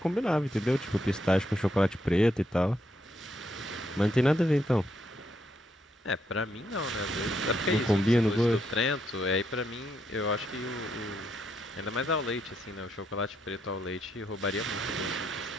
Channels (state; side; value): normal; both; correlation 0.77